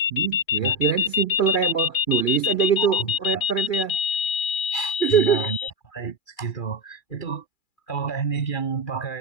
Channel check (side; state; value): right; late; 2.4 ms